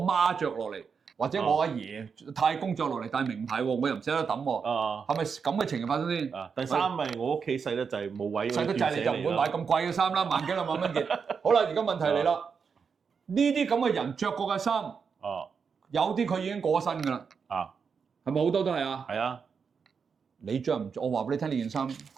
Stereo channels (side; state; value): left; quieter; 6.0 dB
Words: 媽着落嚟，或者我阿爺太公着落嚟戴名牌喎，我又唔捨得抌喎。係咪咁嘅情形發生先？第三咪我屋企細得滯冇位。細得滯你就唔會買咁貴嘅衫啦，萬幾兩萬蚊件。好啦，而家問題嚟啦。呢啲咁嘅人着過嘅衫，有啲佢已經過身㗎啦，係咪好多都係啊？係啊，你着唔着？我話俾你聽，呢件衫